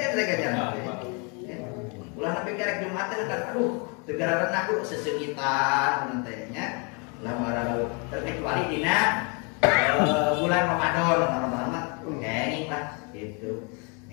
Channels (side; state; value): right; quieter; 34.2 dB